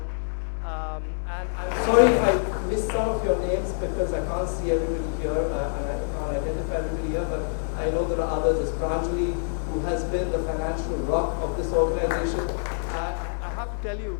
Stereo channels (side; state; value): right; silent; 61 dB below the other